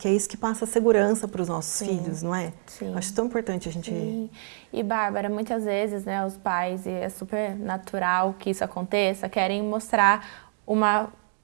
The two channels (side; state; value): left; silent; 59 dB below the other